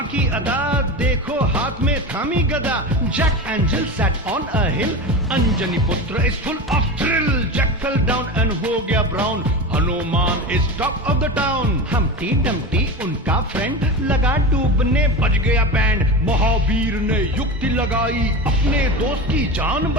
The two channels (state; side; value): normal; both; correlation 0.25